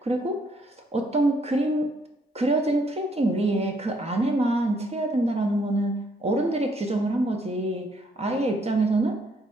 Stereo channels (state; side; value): normal; both; correlation 0.69